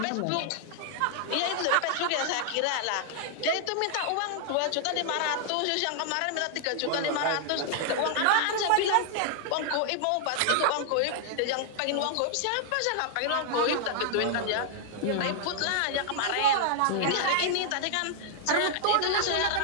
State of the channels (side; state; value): both; different; correlation -0.01